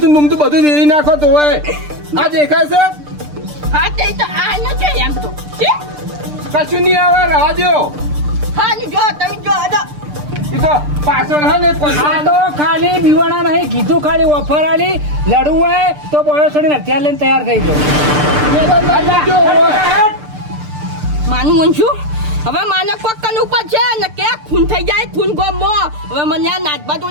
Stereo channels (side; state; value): left; late; 6.7 ms